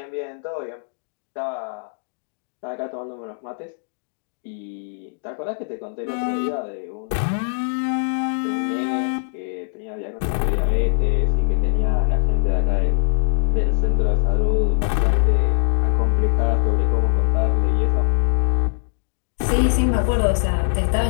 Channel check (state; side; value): silent; right; digital silence